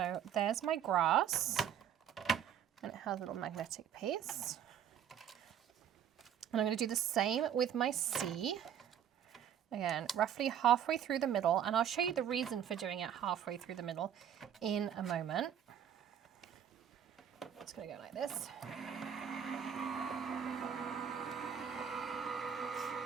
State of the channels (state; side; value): quieter; left; 9.1 dB